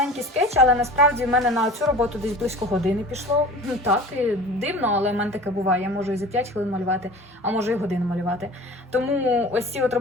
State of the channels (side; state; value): both; normal; correlation 0.40